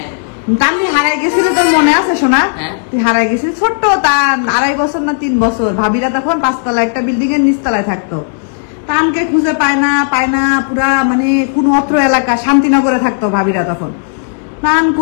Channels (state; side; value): silent; right; digital silence